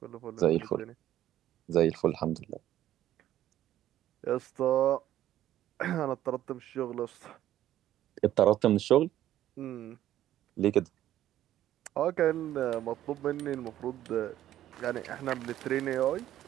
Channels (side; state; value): left; quieter; 12.6 dB